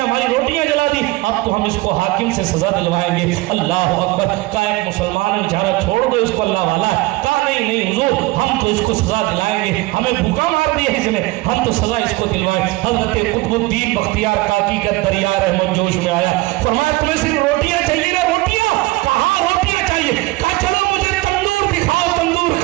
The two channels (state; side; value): quieter; left; 20.7 dB